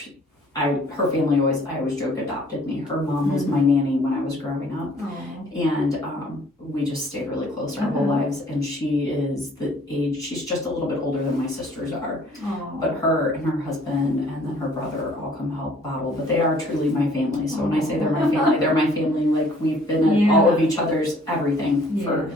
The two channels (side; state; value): both; normal; correlation 0.57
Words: her family I always joke, adopted me. Her mom was my nanny when I was growing up. Oh. And we just stayed really close our whole lives. And she is she's just a little bit older than my sisters are. Oh. But her and her husband and then her brother all come help bottle. But they are truly my family. So when I say they're my family, they're my family. Like, we've been at all of each other's everything for